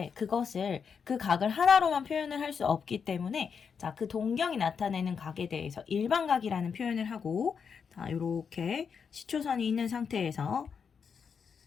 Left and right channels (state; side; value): quieter; right; 6.4 dB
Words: 그 각을 하나로만 표현을 할 수 없기 때문에, 자, 그 동경이 나타내는 각에 대해서 일반각이라는 표현을 하고, 자, 요렇게 시초선이 있는 상태에서